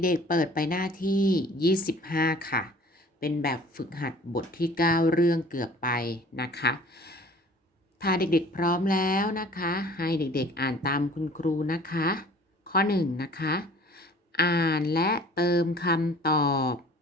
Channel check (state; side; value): normal; both; correlation 0.49